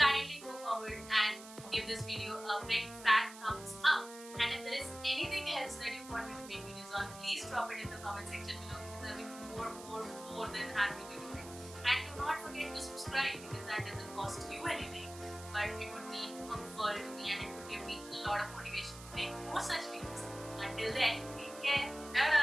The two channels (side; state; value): right; noise; hiss, 15 dB below the sound